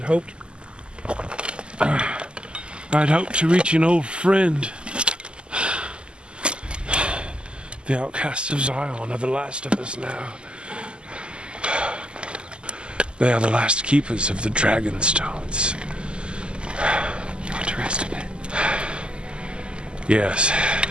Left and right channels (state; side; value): late; left; 0.050 ms